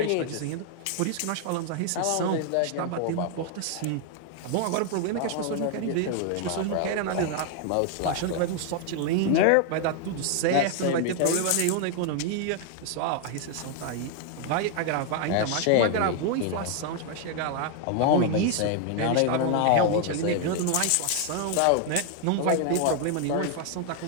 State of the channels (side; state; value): both; different; correlation 0.00